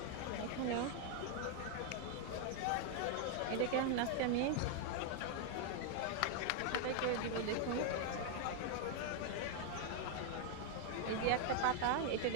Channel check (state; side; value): different; both; correlation 0.00